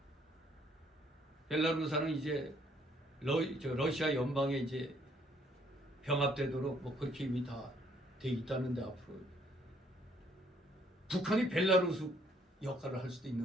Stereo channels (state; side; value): normal; both; correlation 0.65